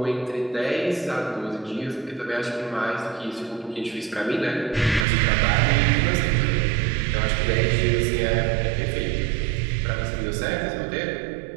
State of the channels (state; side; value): drops out; left; at 5.1 s